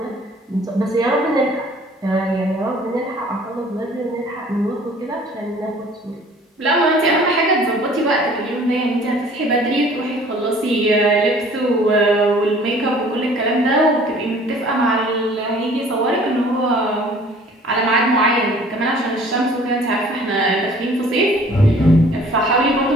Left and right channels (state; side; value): normal; both; correlation 0.52